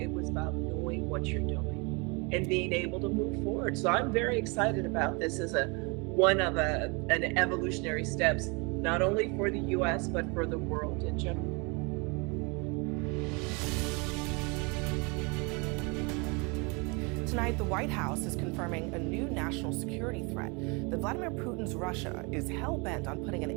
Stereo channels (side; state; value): left; quieter; 30.2 dB